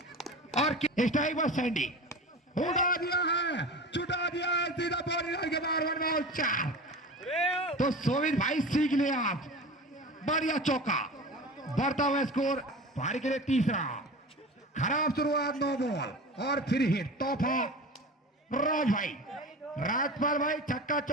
और स्ट्राइक पर सैंडी उड़ा दिया है, चुटा दिया है, सीधा बॉडी लाइन के बाहर, 1 बॉल 4। तो सोविन भाई सीख लिया आप, बढ़िया चौका। बढ़ता हुआ स्कोर भारी के लिए तीसरा। खराब शुरुआत, 9 बॉल और फिर हिट। तोहफा राज भाई, राजपाल भाई छक्का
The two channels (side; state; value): both; normal; correlation 0.33